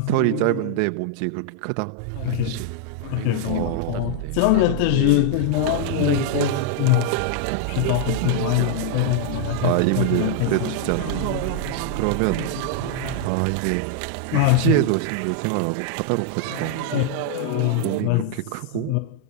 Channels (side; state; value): both; different; correlation -0.01